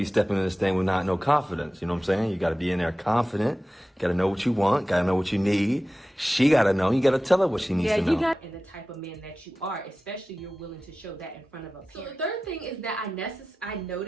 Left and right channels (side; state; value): both; normal; correlation 0.95